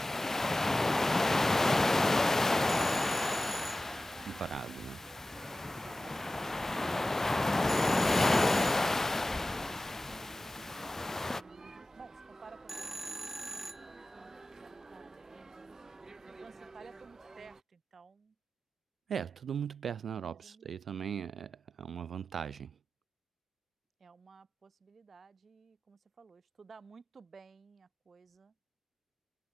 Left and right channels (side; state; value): both; normal; correlation 0.95